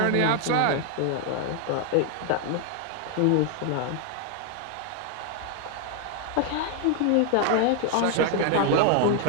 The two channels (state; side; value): different; both; correlation 0.00